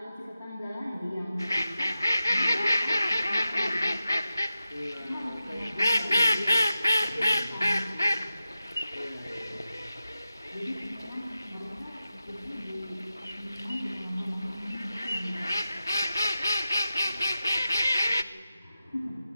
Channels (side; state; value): both; inverted; correlation -0.92